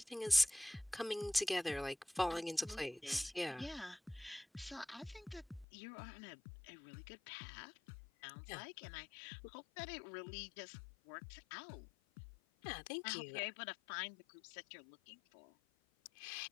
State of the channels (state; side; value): drops out; right; at 5.7 s